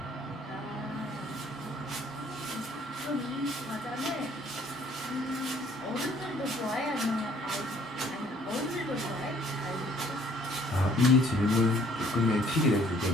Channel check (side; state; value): both; normal; correlation 0.60